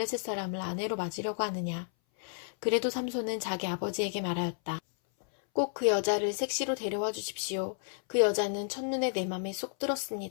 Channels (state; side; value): silent; right; 57 dB below the other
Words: 사람을 아내로 맞으려고 하느냐? 그래도 삼손은 자기 아버지에게 말하였다. 꼭 그 여자를 색시로 데려와 주십시오. 그 여자는 첫눈에 내 맘에 쏙